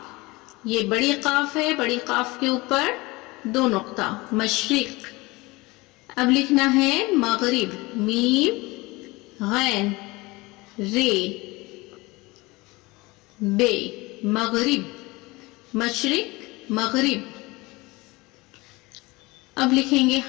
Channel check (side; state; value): right; quieter; 22.8 dB